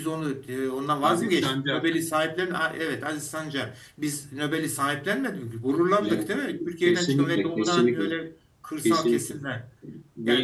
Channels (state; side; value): identical; both; correlation 1.00